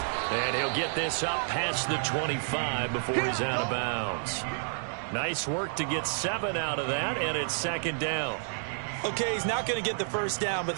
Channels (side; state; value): left; silent; digital silence